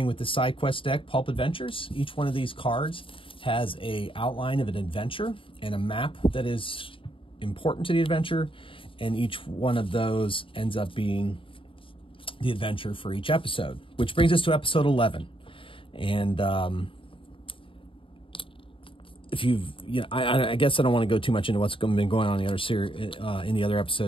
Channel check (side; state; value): right; late; 0.25 ms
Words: with the side quest deck, Pulp Adventures. Each one of these cards has an outline of an adventure and a map that is important to the adventure, and each one of those ends up being the adventure for each episode, which brings us to episode 11. And if you've, I guess I don't want to go too much into what's been going on in the other series, in the other